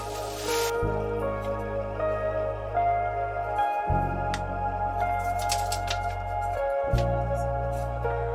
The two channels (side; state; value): both; identical; correlation 1.00